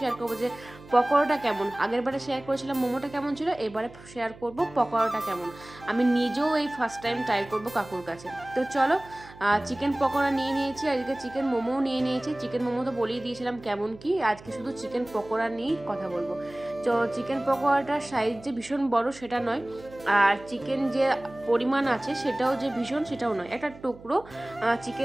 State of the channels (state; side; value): noise; right; hum, 20 dB below the sound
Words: শেয়ার করবো যে পকোড়াটা কেমন। আগের বারে শেয়ার করেছিলাম মোমোটা কেমন ছিল, এবারে শেয়ার করবো পকোড়াটা কেমন। আমি নিজেও এই ফার্স্ট টাইম ট্রাই করবো কাকুর কাছে। তো চলো, চিকেন পকোড়া নিয়ে নিয়েছি, আজকে চিকেন মোমোও নিয়ে নিয়েছি। চিকেন মোমো তো বলেই দিয়েছিলাম কেমন কি, আজকে শুধু চিকেন পকোড়া নিয়েই কথা বলবো। তো চিকেন পকোড়াটার সাইজ যে ভীষণ বড় সেটা নয়, আর চিকেন যে পরিমাণ আছে সেটাও যে ভীষণ সেটাও নয়, একটা টুকরো